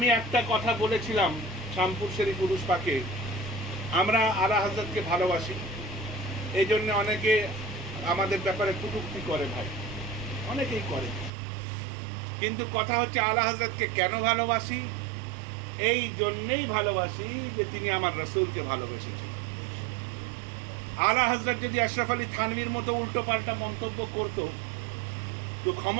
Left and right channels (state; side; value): drops out; left; at 11.3 s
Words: একটা কথা বলেছিলাম শামপুর শরীফ উরুস পাকে, আমরা আলা হযরতকে ভালোবাসি, এই জন্য অনেকে আমাদের ব্যাপারে কটূক্তি করে ভাই, অনেকেই করে। কিন্তু কথা হচ্ছে আলা হযরতকে কেন ভালোবাসি? এই জন্যেই ভালোবাসি যে তিনি আমার রাসূলকে ভালোবেসেছেন। আলা হযরত যদি আশরাফ আলী থানভীর মতো উল্টো পাল্টা মন্তব্য করতো, তো